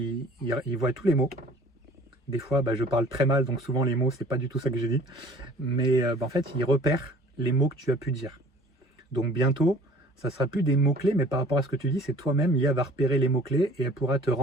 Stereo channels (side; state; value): both; normal; correlation 0.50